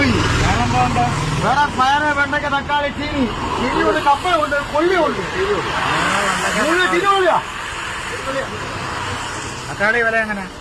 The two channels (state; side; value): identical; both; correlation 1.00